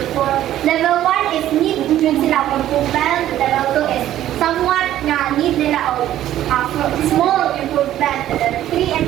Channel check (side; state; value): left; quieter; 12.6 dB